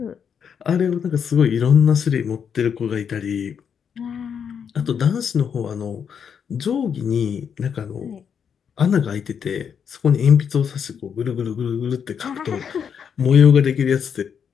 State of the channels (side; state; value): right; quieter; 7.3 dB